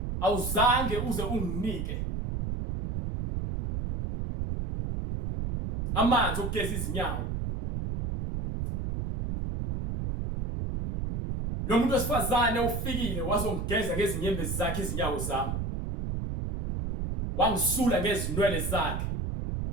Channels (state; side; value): noise; right; rumble, 2 dB below the sound